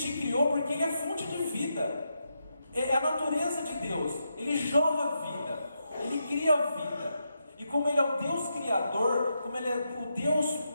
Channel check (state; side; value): inverted; both; correlation -0.84